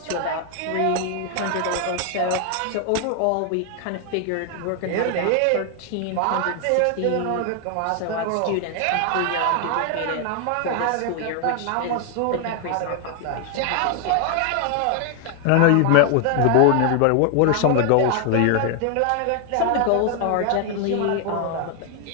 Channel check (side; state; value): both; different; correlation 0.00